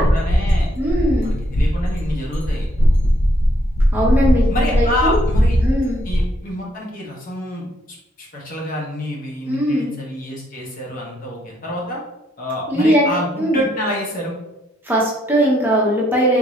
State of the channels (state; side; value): normal; both; correlation 0.72